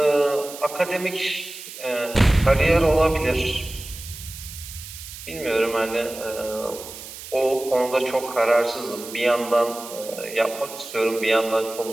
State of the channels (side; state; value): right; noise; hiss, 13 dB below the sound